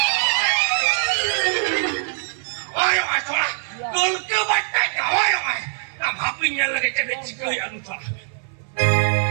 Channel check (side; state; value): left; silent; digital silence